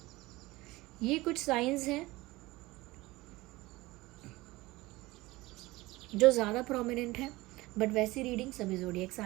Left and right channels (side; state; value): left; quieter; 20.1 dB